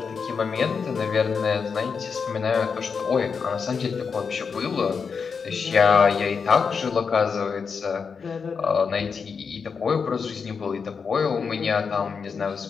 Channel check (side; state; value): right; quieter; 5.7 dB